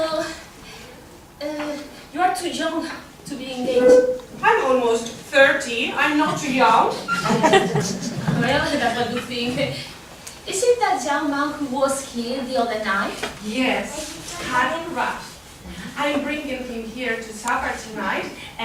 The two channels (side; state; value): both; identical; correlation 1.00